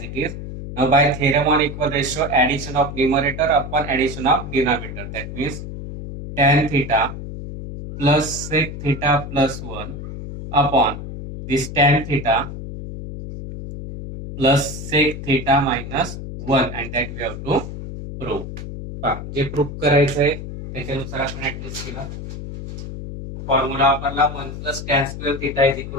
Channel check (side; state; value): left; noise; hum, 9 dB below the sound